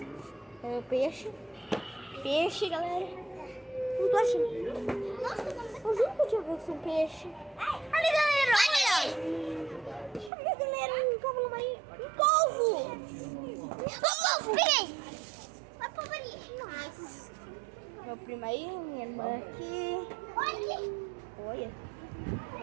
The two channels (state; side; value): drops out; left; at 10.3 s